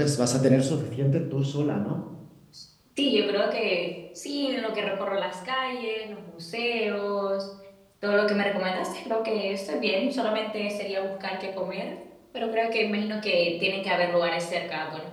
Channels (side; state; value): both; identical; correlation 1.00